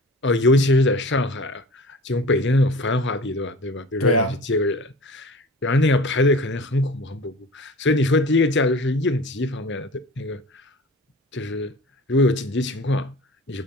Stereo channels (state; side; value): normal; both; correlation 0.40